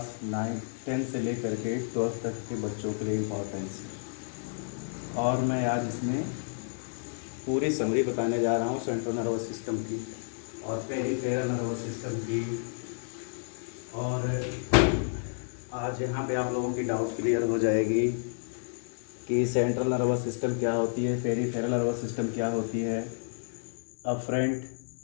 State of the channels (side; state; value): right; silent; digital silence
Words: 9 10 से लेकर के 12 तक के बच्चों के लिए इम्पोर्टेंस है। और मैं आज इसमें पूरी समरी बताने जा रहा हूँ सेंट्रल नर्वस सिस्टम की और पेरिफेरल नर्वस सिस्टम की। और आज यहाँ पे आप लोगों की डाउट क्लियर हो जाएगी कि सेंट्रल नर्वस सिस्टम क्या होती है, पेरिफेरल नर्वस सिस्टम क्या होती है, अफरेंट